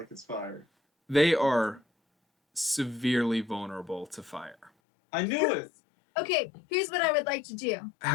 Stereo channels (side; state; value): right; drops out; at 4.7 s